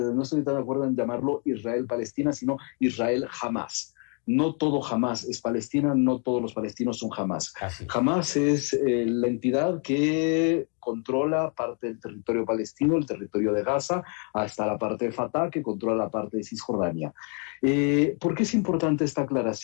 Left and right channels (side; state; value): right; quieter; 39.9 dB